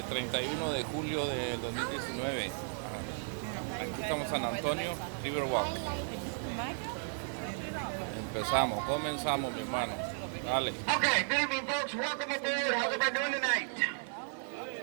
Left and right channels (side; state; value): left; silent; 55 dB below the other